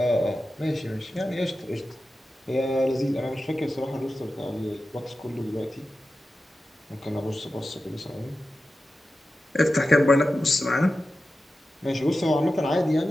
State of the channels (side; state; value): both; normal; correlation 0.93